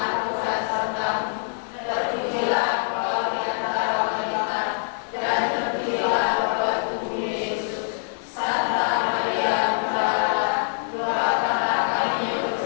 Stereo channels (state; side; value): silent; right; digital silence